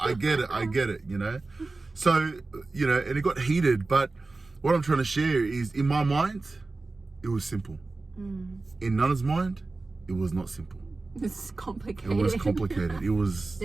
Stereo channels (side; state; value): left; quieter; 3.5 dB